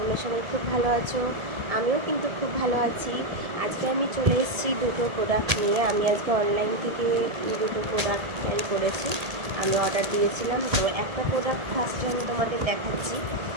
সবাই খুব ভালো আছো। আমিও কিন্তু খুব ভালো আছি। আজকে আমি চলে এসেছি দুটো প্রোডাক্ট নিয়ে। আমি আজকে অনলাইন থেকে দুটো প্রোডাক্ট ক্যারি করেছি, আমি অর্ডার দিয়েছিলাম। তো একটা প্রোডাক্ট ফার্স্টে আমি তোমাদের দেখাচ্ছি।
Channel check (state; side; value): late; left; 1.8 ms